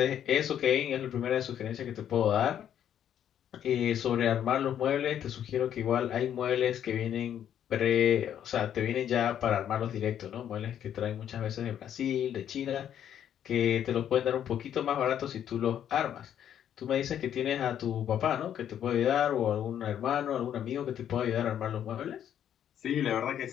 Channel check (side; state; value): right; quieter; 9.9 dB